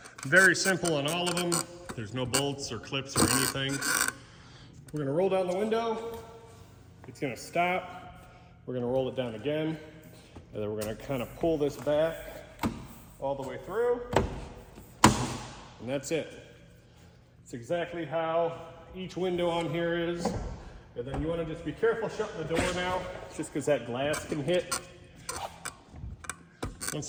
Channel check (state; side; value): identical; both; correlation 1.00